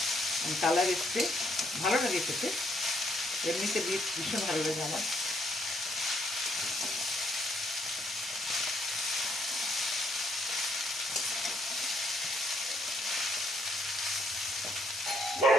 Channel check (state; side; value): normal; both; correlation 0.71